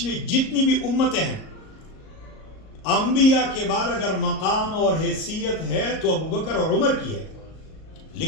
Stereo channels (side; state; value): right; late; 38 ms